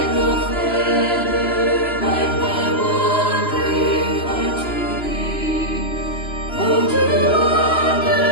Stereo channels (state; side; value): late; right; 2.9 ms